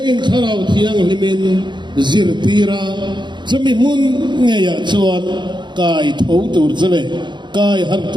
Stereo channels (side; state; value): left; late; 0.22 ms